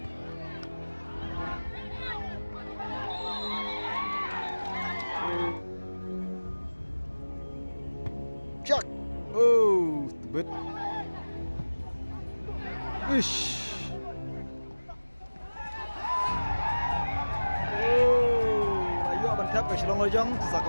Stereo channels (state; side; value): inverted; both; correlation -1.00